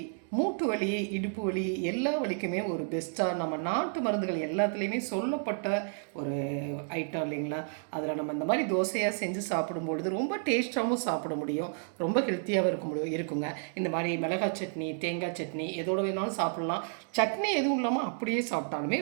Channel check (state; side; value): silent; left; 57 dB below the other